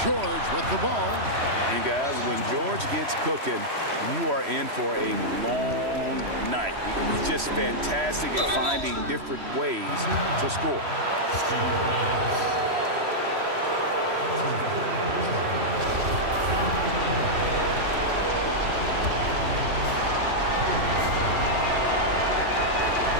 George with the ball. And guys, when George gets cooking, you are in for a long night. He's just fantastic at finding different ways to score.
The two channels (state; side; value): late; left; 3.1 ms